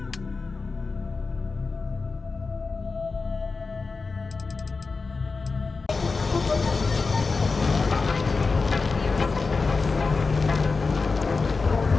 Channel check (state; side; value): quieter; right; 4.2 dB